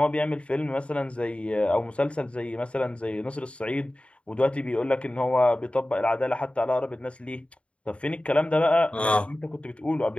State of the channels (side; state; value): right; late; 0.060 ms